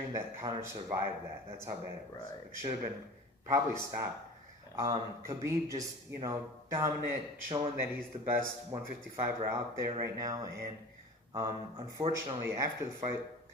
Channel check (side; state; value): both; normal; correlation 0.38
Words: that Conor survived that. That's how bad it was. Right. It should have been probably stopped. Khabib just, dominant, showing that he's the best 155er out there right now. And unfortunately, after the fight,